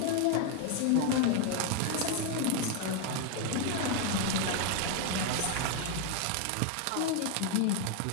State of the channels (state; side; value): different; both; correlation 0.01